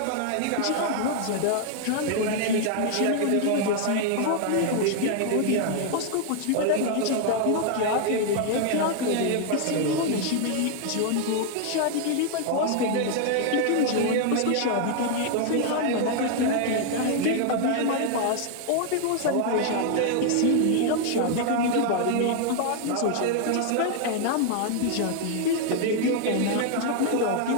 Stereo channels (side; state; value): both; different; correlation 0.00